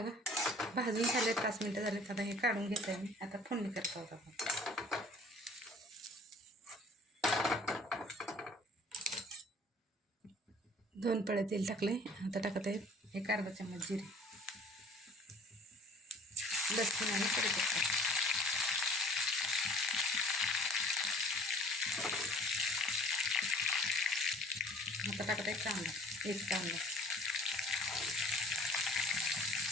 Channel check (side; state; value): both; normal; correlation 0.51